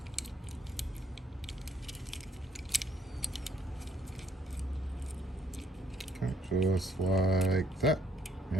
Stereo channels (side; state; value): both; normal; correlation 0.66